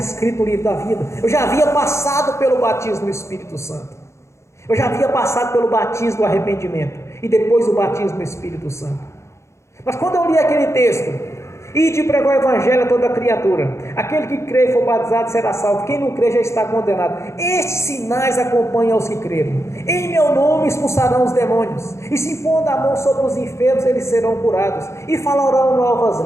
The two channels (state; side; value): late; right; 0.14 ms